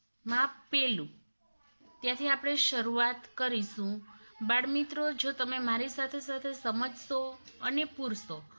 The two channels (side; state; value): both; inverted; correlation -1.00